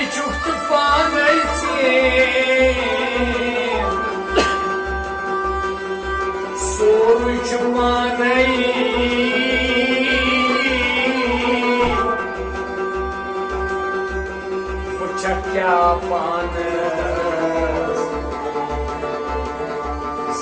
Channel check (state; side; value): identical; both; correlation 1.00